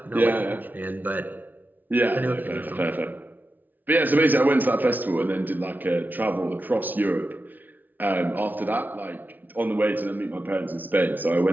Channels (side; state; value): left; late; 0.083 ms